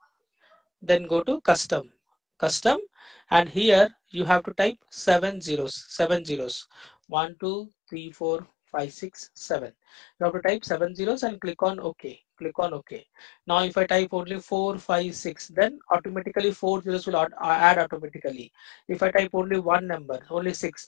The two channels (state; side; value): drops out; right; at 6.9 s